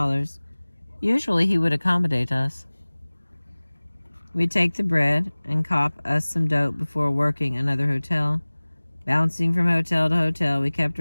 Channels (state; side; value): inverted; both; correlation -1.00